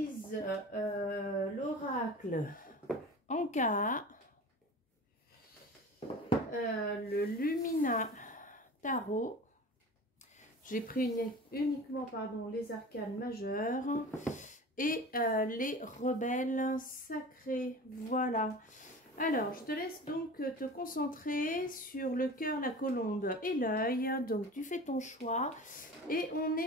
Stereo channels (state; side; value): normal; both; correlation 0.36